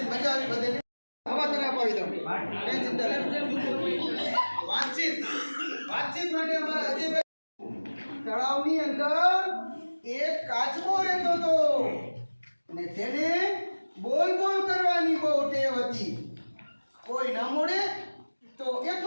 મજા આવી બધે. હવા તને અપાવી. હતી. કોઈ ન મળે તો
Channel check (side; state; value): both; inverted; correlation -1.00